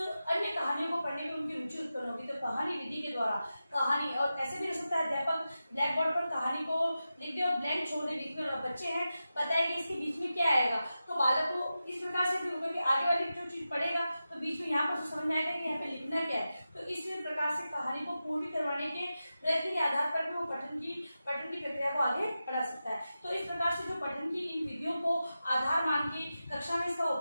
कहानियों को पढ़ने में उनकी रुचि उत्पन्न होगी। तो कहानी विधि के द्वारा कहानी, और ऐसे भी हो सकता है अध्यापक ब्लैक बोर्ड पर कहानी को लिख दे और ब्लैंक छोड़ दे, बीच में बच्चे हैं बताएंगे इसके बीच में क्या आएगा। तो बालक को इस प्रकार से भी होगा कि आगे वाली जो चीज पढ़ेगा तो बीच में यहाँ पर समझ में आएगा कि यहाँ पे लिखना क्या है। तो इस प्रकार से कहानी को पूर्ण करवाने के प्रयत्न के आधार पर भी वो पठन की प्रक्रिया को आगे बढ़ा सकता है। तो इस प्रकार से जो पठन की इन विधियों को आधार मान के कक्षा में इसका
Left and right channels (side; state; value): both; inverted; correlation -0.92